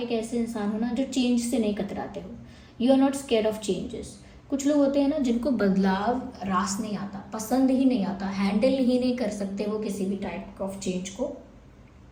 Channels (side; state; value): both; identical; correlation 1.00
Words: ऐसे इंसान हो ना जो चेंज से नहीं कतराते हो। You are not scared of changes. कुछ लोग होते हैं ना जिनको बदलाव रास नहीं आता, पसंद ही नहीं आता, हैंडल ही नहीं कर सकते वो किसी भी टाइप ऑफ चेंज को।